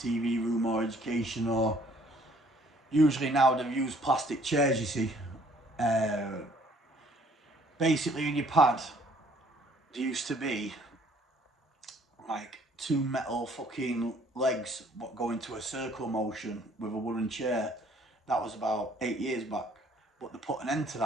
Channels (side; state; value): both; normal; correlation 0.60